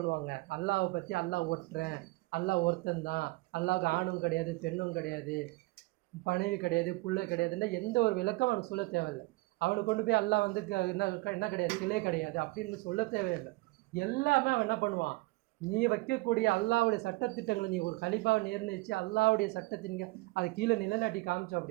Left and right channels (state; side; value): quieter; left; 22.8 dB